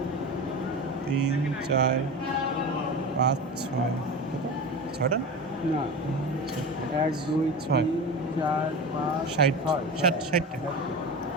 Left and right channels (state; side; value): normal; both; correlation 0.28